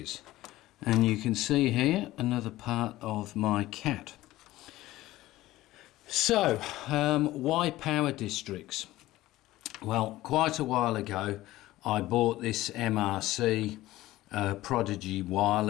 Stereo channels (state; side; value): quieter; right; 16.6 dB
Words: and you can see here another part of my cat. So why power districts? Well, quite a while ago I bought this MRC Prodigy